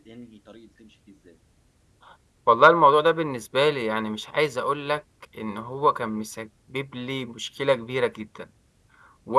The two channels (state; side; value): identical; both; correlation 1.00